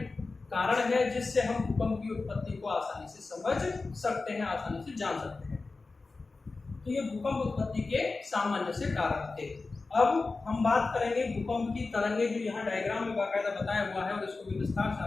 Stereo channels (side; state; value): right; quieter; 3.8 dB